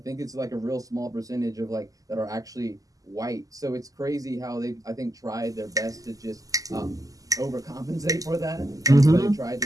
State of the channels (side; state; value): left; late; 0.17 ms